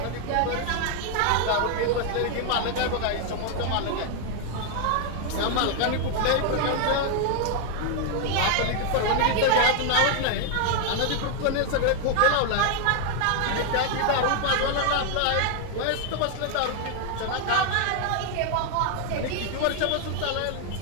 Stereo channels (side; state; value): both; different; correlation 0.01